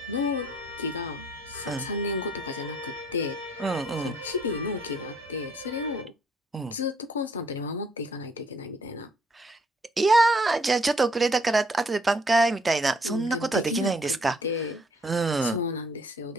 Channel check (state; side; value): normal; both; correlation 0.64